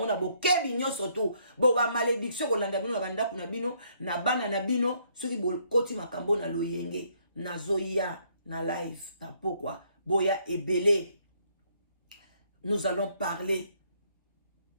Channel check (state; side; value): inverted; both; correlation -0.69